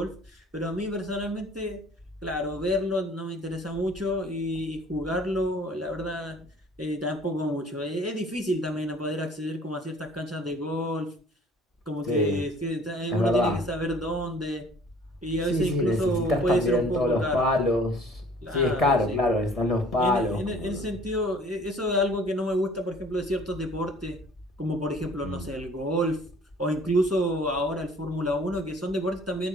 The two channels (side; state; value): both; normal; correlation 0.52